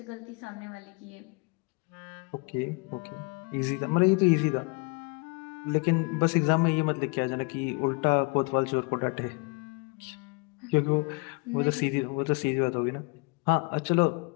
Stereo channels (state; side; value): quieter; right; 30.2 dB